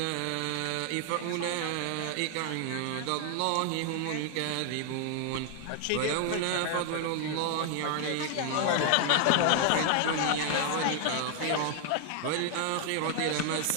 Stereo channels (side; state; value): both; different; correlation 0.00